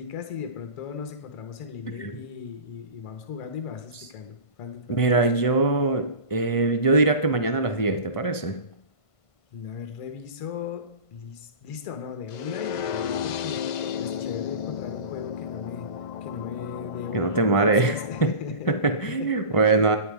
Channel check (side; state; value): right; late; 1.5 ms